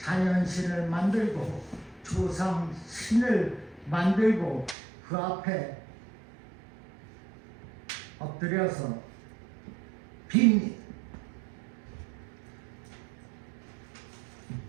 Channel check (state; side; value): drops out; left; at 4.8 s